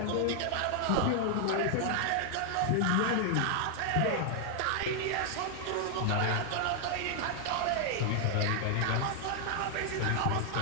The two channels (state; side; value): different; both; correlation 0.00